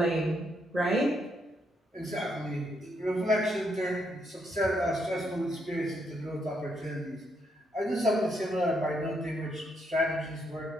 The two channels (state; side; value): normal; both; correlation 0.76